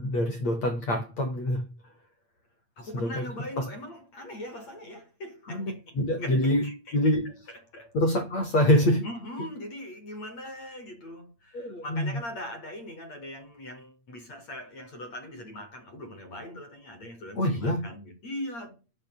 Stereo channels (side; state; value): right; late; 8.6 ms